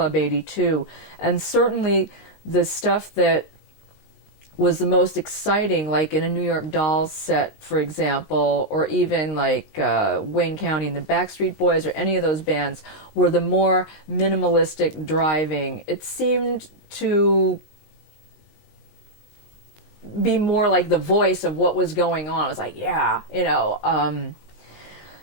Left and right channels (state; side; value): late; right; 19 ms